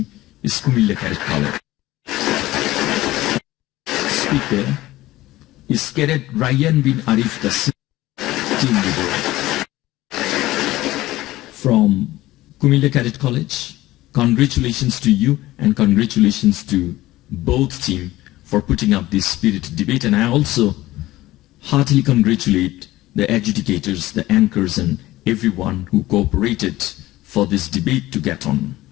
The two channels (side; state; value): right; quieter; 17.0 dB